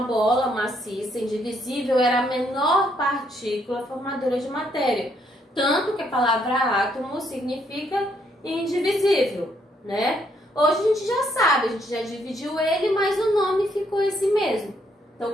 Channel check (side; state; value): both; normal; correlation 0.72